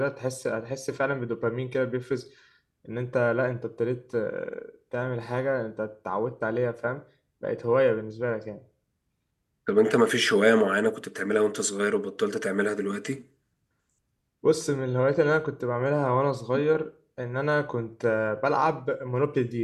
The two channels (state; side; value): identical; both; correlation 1.00